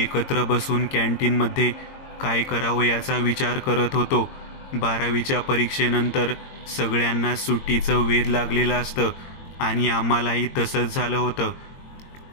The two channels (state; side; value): late; right; 22 ms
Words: एकत्र बसून कॅन्टीनमध्ये काय करावं याचा विचार करत होतो. 12वीच्या परीक्षेनंतर सगळ्यांना सुट्टीचं वेध लागलेलं असतं आणि आम्हालाही तसंच झालं होतं.